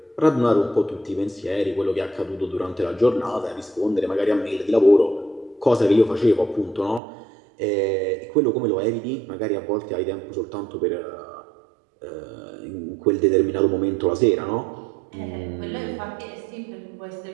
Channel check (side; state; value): left; drops out; at 7.0 s